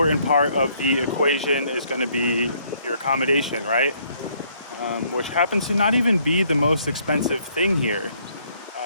part of the equation is going to be your accommodation, right? Which happens to not even be the most expensive thing here.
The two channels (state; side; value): inverted; both; correlation -0.66